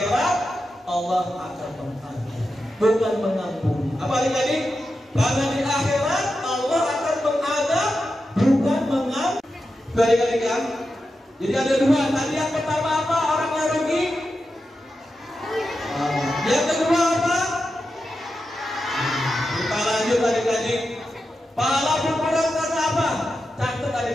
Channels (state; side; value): normal; both; correlation 0.90